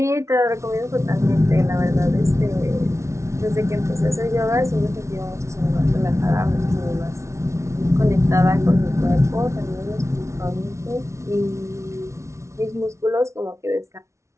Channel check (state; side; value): late; left; 0.14 ms